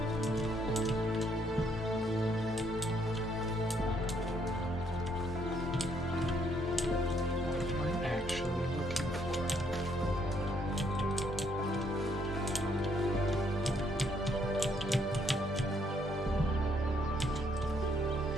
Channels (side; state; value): both; normal; correlation 0.70